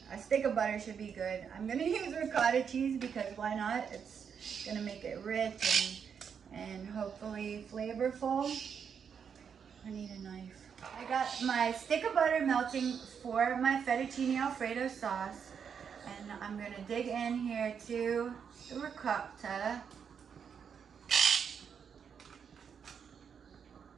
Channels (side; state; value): left; quieter; 7.1 dB